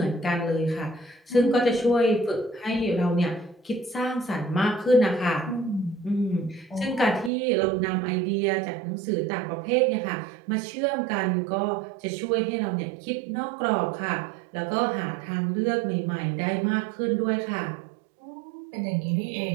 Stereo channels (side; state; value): left; drops out; at 7.3 s